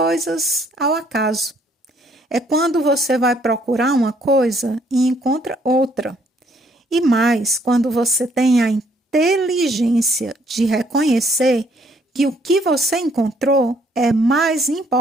ao acaso. É quando você vai procurar uma coisa e encontra outra. E mais, quando você tem a inteligência de reconhecer que o que você encontrou é mais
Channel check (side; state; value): both; normal; correlation 0.66